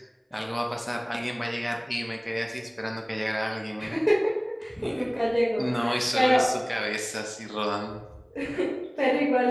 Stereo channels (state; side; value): identical; both; correlation 1.00